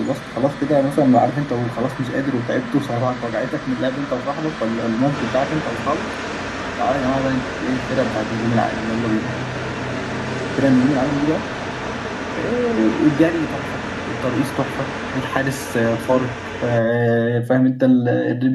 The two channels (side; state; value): both; identical; correlation 1.00